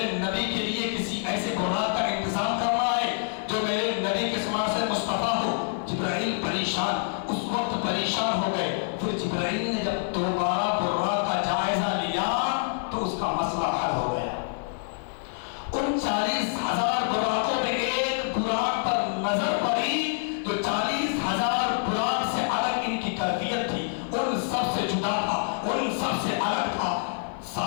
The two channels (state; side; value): silent; right; 60 dB below the other